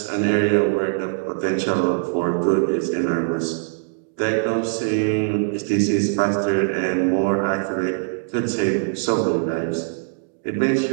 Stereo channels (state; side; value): silent; left; digital silence